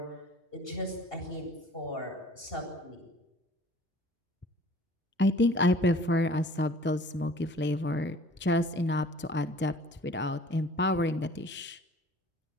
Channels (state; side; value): normal; both; correlation 0.50